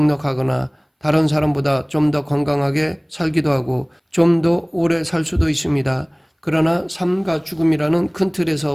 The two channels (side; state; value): both; identical; correlation 1.00